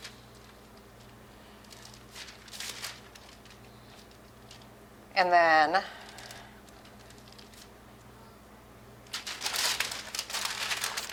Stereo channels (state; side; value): identical; both; correlation 1.00